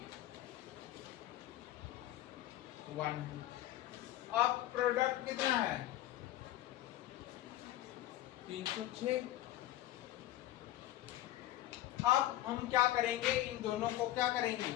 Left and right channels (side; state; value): right; quieter; 14.7 dB